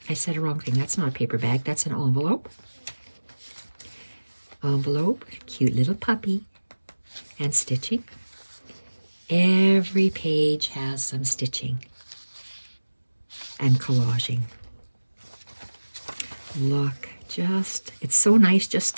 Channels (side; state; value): both; inverted; correlation -1.00